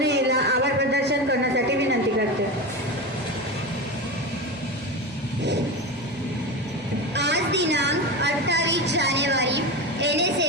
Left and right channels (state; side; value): normal; both; correlation 0.22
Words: हिला आभार प्रदर्शन करण्यासाठी विनंती करते. आज दिनांक 28 जानेवारी